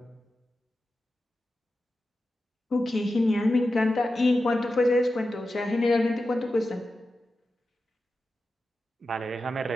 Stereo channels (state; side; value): normal; both; correlation 0.92